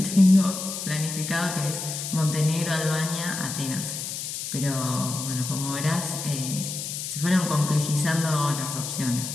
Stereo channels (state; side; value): noise; left; hiss, 6 dB below the sound